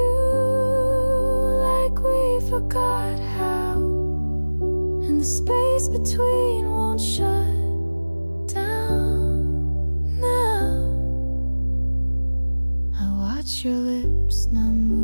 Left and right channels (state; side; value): inverted; both; correlation -1.00